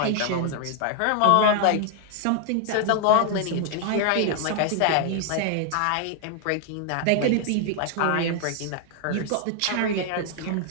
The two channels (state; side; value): different; both; correlation 0.00